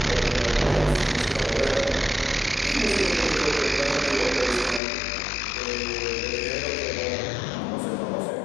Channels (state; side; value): drops out; right; at 4.8 s